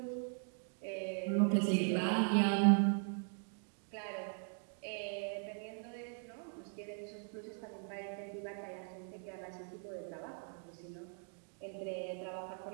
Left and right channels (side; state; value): left; silent; 51 dB below the other